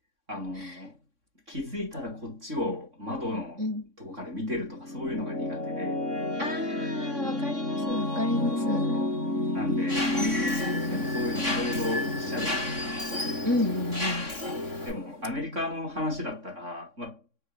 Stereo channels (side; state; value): left; late; 3.6 ms